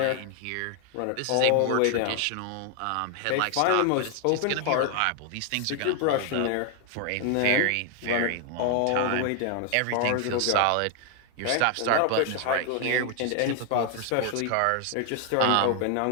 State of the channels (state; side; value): different; both; correlation 0.00